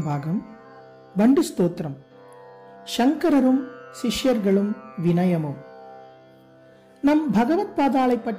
பாகம். வண்டு ஸ்தோத்திரம். சங்கரரும் சிஷ்யர்களும் வினயமும். நம் பகவத் பாதாளை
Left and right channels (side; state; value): both; identical; correlation 1.00